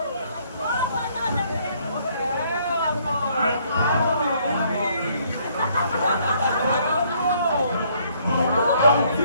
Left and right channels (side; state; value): both; inverted; correlation -0.66